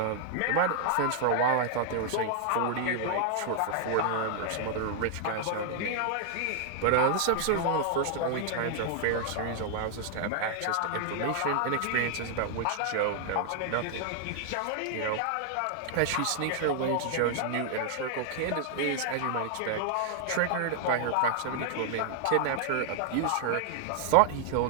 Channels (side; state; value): both; different; correlation 0.00